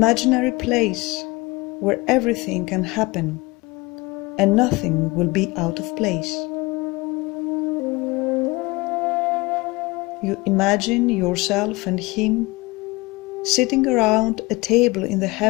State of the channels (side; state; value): right; quieter; 23.1 dB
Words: place where everything can happen and nothing will be out of place. You imagine yourself and him sitting around a table in the